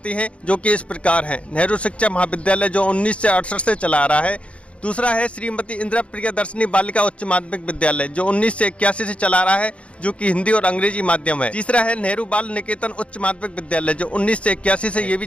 हैं जो कि इस प्रकार हैं। नेहरू शिक्षा महाविद्यालय जो 1968 से चला आ रहा है। दूसरा है श्रीमती इंदिरा प्रियदर्शनी बालिका उच्च माध्यमिक विद्यालय जो 1981 से चला रहा है, जो कि हिंदी और अंग्रेजी माध्यम है। तीसरा है नेहरू बाल निकेतन उच्च माध्यमिक विद्यालय जो 1981 से ये भी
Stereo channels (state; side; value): late; right; 0.061 ms